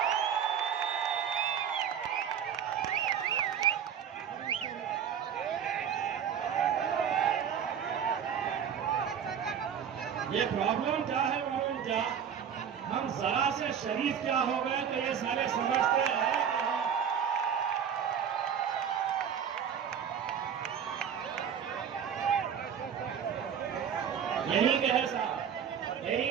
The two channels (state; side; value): quieter; left; 8.1 dB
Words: ये प्रॉब्लम क्या है मालूम क्या? हम जरा से शरीफ क्या हो गए तो ये सारे समझते हैं यही के है साहब, यही